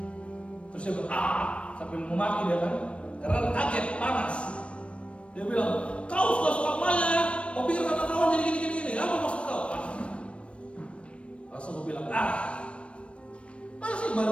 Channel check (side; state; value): right; late; 0.060 ms